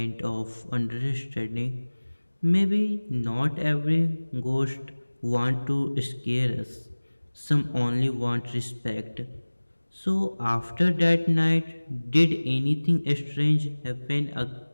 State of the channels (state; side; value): inverted; both; correlation -1.00